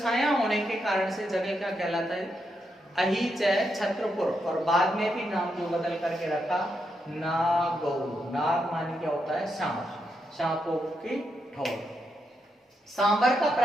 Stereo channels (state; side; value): normal; both; correlation 0.82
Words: छाया होने के कारण से जगह क्या कहलाता है, अहीच छत्रपुर। और बाद में भी नाम जो बदल करके रखा नागौर, नाग मानी क्या होता है, सांप, सांपों की ठोर। सांबर का